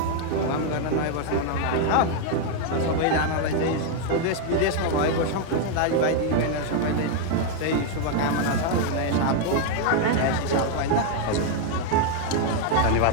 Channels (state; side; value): different; both; correlation 0.00